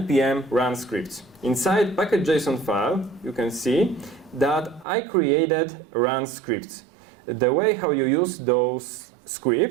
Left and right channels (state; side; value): drops out; left; at 4.9 s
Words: run scripts. Inside package.json file, you can see that I created run scripts. The way how you use those